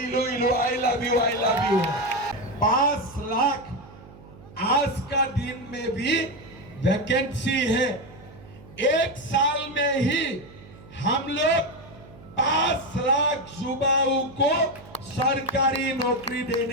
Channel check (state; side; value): noise; right; hum, 20 dB below the sound